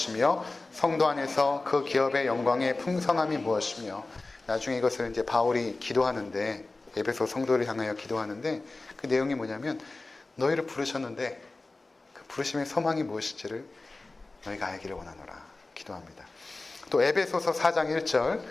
성도 안에서 그 기업의 영광의 풍성함이 무엇이며 나중에 이것을 이제 바울이 기도하는데 에베소 성도를 향하여 기도하는데 그 내용이 뭐냐면 너희를 부르셨는데 그 부르심의 소망이 무엇인지를 너희가 알기를 원하노라 기도합니다. 또 에베소서 4장 1절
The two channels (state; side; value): quieter; right; 3.3 dB